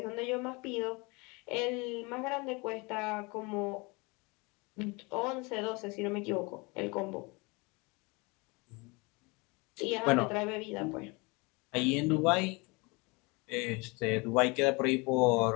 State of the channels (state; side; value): quieter; right; 27.5 dB